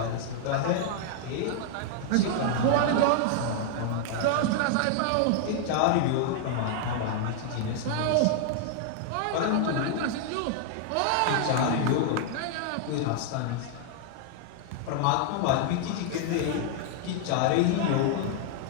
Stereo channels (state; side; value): different; both; correlation -0.01